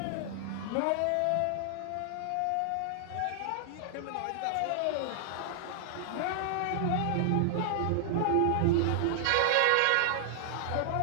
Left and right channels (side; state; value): both; different; correlation 0.00